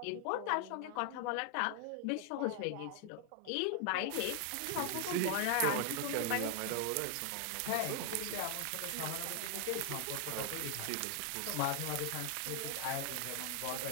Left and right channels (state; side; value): different; both; correlation 0.00